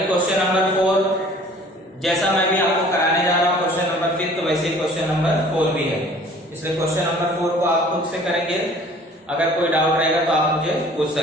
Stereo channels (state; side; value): normal; both; correlation 0.51